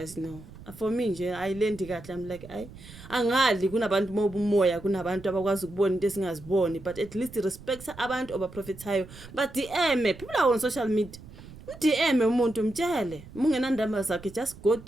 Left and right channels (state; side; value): noise; right; rumble, 17 dB below the sound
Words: no for me nje ayilendi kahle I'm like angali kunabantu mobumoya kunabantu abakwazi ukubona into esingaziboni but at least respect abantu obaprofethayo but DM people are on social media DM umuntu mtshele mungenandaba zakhe just go